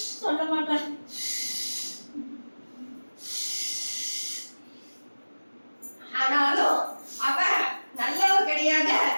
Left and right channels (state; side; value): inverted; both; correlation -1.00